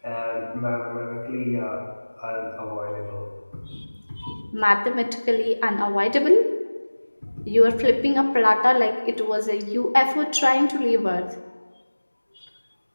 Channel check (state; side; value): inverted; both; correlation -1.00